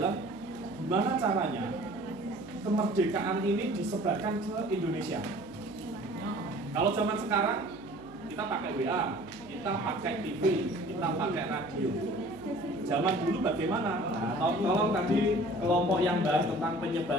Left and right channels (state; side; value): noise; right; hum, 23 dB below the sound